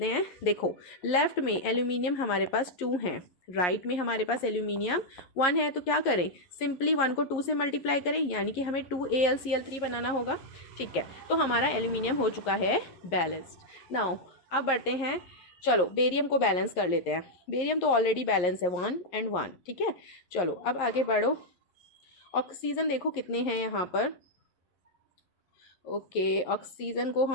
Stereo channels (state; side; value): late; right; 11 ms